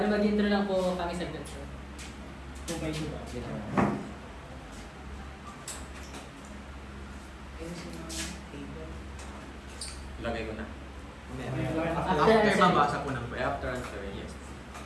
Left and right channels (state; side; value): identical; both; correlation 1.00